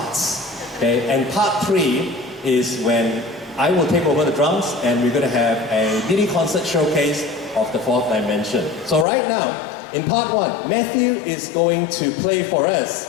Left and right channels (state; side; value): drops out; right; at 9.1 s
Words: Okay? And part 3 is when I will take over the drums and we're going to have a mini concert showcase of the 4th dimension. So right now, in part 1, Matthew is going to play for